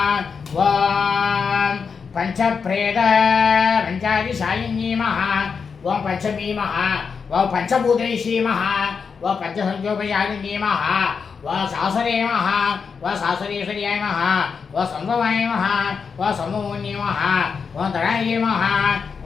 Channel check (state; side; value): quieter; right; 5.8 dB